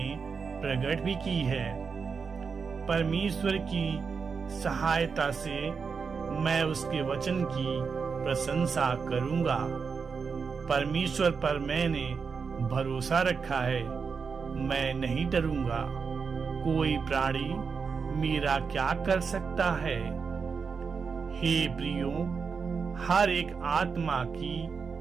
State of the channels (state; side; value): quieter; left; 5.5 dB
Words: प्रकट भी की है। परमेश्वर की सहायता से मैं उसके वचन की प्रशंसा करूंगा। परमेश्वर पर मैंने भरोसा रखा है, मैं नहीं डरूंगा। कोई प्राणी मेरा क्या कर सकता है? हे प्रियो, हर एक आत्मा की